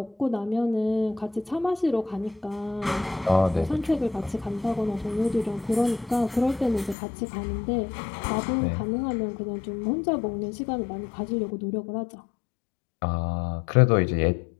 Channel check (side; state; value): right; drops out; at 7.0 s